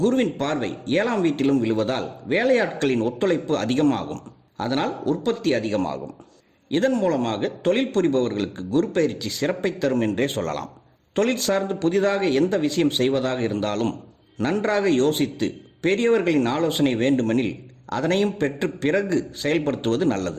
குருவின் பார்வை 7ஆம் வீட்டிலும் விழுவதால் வேலையாட்களின் ஒத்துழைப்பு அதிகமாகும். அதனால் உற்பத்தி அதிகமாகும். இதன் மூலமாக தொழில் புரிபவர்களுக்கு குரு பயிற்சி சிறப்பை தரும் என்றே சொல்லலாம். தொழில் சார்ந்து புதிதாக எந்த விஷயம் செய்வதாக இருந்தாலும் நன்றாக யோசித்து பெரியவர்களின் ஆலோசனை வேண்டுமெனில் அதனையும் பெற்று பிறகு செயல்படுத்துவது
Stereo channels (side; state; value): both; identical; correlation 1.00